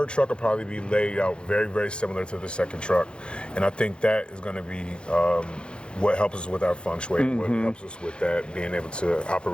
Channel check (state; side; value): late; right; 0.054 ms